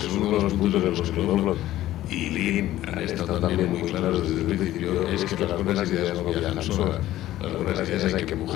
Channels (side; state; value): right; quieter; 14.4 dB